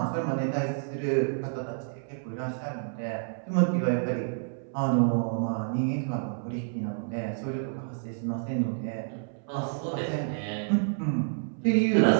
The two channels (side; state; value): left; silent; 59 dB below the other